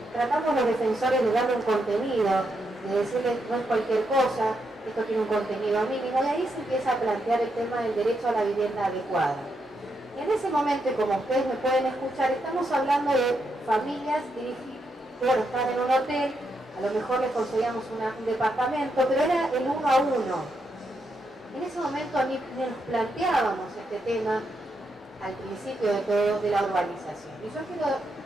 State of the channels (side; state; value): both; normal; correlation 0.81